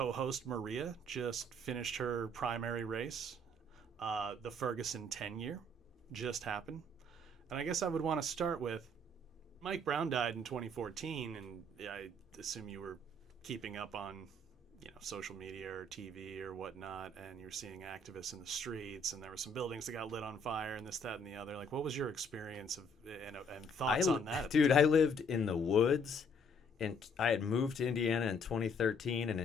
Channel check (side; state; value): both; normal; correlation 0.64